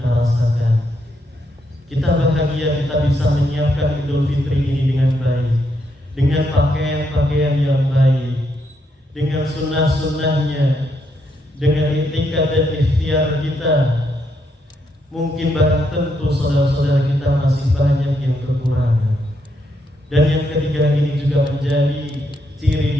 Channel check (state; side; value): normal; both; correlation 0.78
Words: rasakan. Kita bahagia kita bisa menyiapkan Idul Fitri ini dengan baik, dengan pakaian-pakaian yang baik, dengan sunnah-sunnahnya, dengan itikad dan ikhtiar kita. Mungkin barang tentu saudara-saudara kita masih banyak yang kekurangan. Dan yang ketiga ini juga menjadi